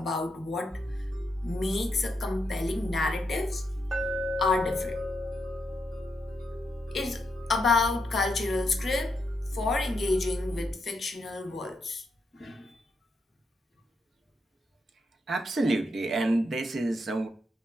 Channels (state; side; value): normal; both; correlation 0.82